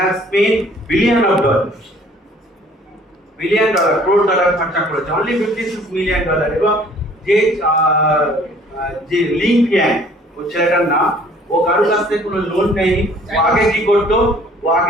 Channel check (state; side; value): normal; both; correlation 0.56